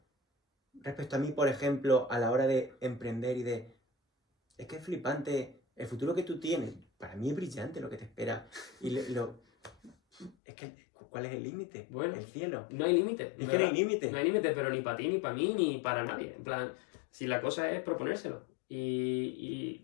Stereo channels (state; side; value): drops out; right; at 10.4 s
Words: respecto a mí, por ejemplo, a la hora de emprender y de... Es que es flipante. El futuro que tú tienes, para mí es brillante lo que te espera. Y es que, ¿cuál es el límite? Bueno, el cielo. No hay límite. Es que no hay límite. No hay límite, pero ni para ti, ni para mí, ni para nadie. En plan, si la cosa es proponérselo y